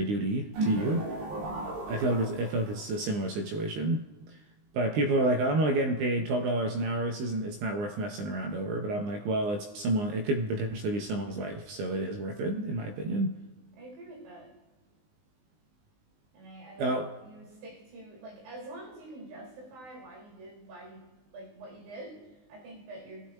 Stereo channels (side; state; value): left; late; 19 ms